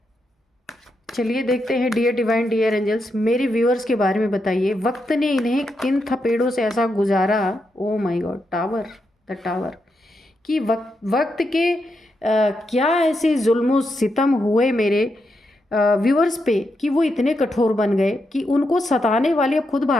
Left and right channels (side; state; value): both; normal; correlation 0.84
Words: चलिए देखते हैं। डियर डिवाइन, डियर एंजल्स, मेरे व्यूअर्स के बारे में बताइए। वक्त ने इन्हें किन थपेड़ों से ऐसा गुजारा, oh my God, tower, the tower, कि वक्त के क्या ऐसे जुल्म सितम हुए मेरे व्यूअर्स पे कि वो इतने कठोर बन गए कि उनको सताने वाले अब खुद